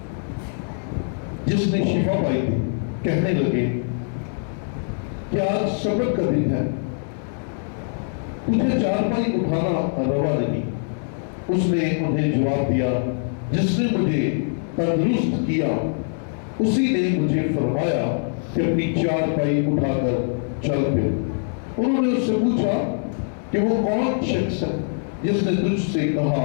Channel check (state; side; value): silent; right; digital silence